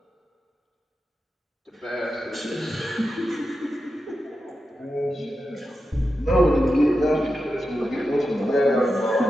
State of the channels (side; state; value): both; normal; correlation 0.90